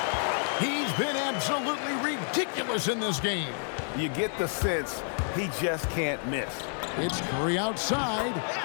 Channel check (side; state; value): right; silent; 58 dB below the other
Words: He's been absolutely ridiculous in this game. You get the sense he just can't miss. It's Curry outside.